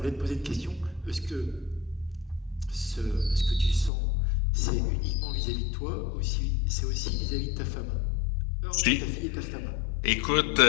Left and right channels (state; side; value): drops out; right; at 3.9 s